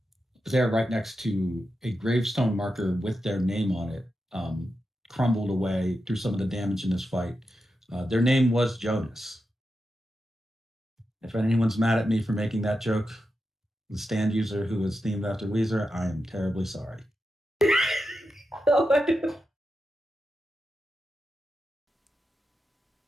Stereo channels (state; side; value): normal; both; correlation 0.89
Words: They're right next to a gravestone marker with their name on it, crumbled away through some of the damage in this fight. Their name was Jonas. If anyone's mad at me for making that joke, the stand user who is themed after Weezer, I am terribly sorry.